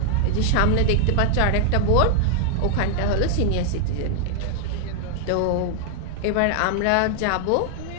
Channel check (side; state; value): both; different; correlation 0.00